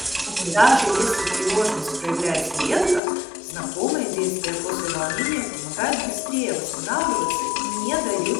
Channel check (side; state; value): right; drops out; at 3.0 s